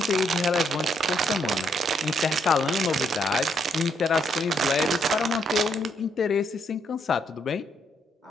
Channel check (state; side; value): normal; both; correlation 0.74